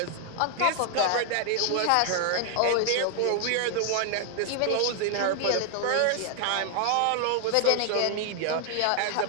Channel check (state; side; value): different; both; correlation 0.00